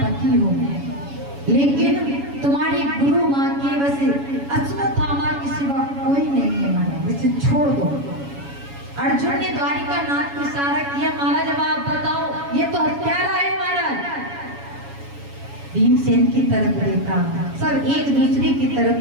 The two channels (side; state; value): left; late; 7.2 ms